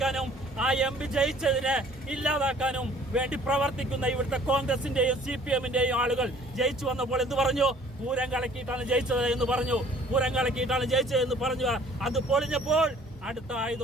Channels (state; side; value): normal; both; correlation 0.54